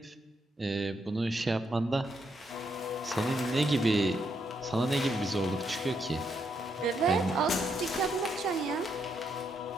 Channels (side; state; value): both; normal; correlation 0.78